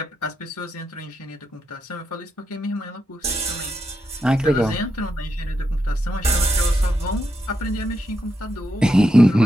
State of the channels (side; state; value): both; normal; correlation 0.84